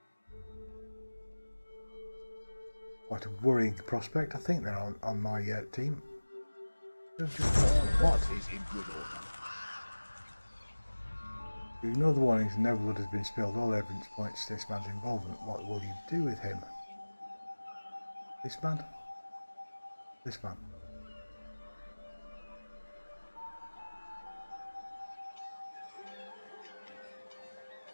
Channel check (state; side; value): inverted; both; correlation -1.00